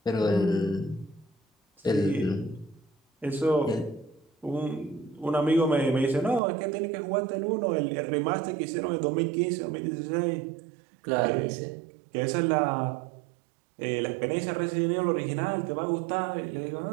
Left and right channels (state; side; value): drops out; left; at 6.4 s